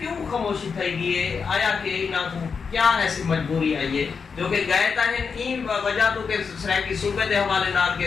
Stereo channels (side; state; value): right; quieter; 5.6 dB